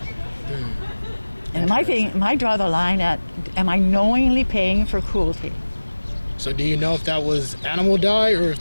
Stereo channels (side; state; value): both; inverted; correlation -1.00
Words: And my draw the line at, am I knowingly paying for cruelty? So do you know if that was animal dye or if